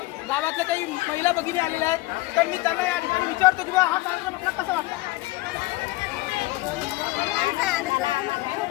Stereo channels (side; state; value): right; quieter; 20.0 dB